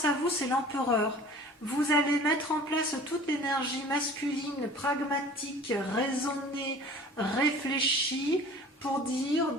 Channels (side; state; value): both; normal; correlation 0.45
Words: à vous, c'est l'empereur. Vous allez mettre en place toute l'énergie masculine, pragmatique, raisonnée, réfléchie, pour dire